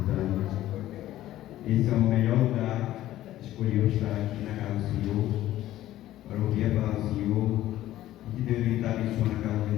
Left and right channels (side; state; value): right; quieter; 14.1 dB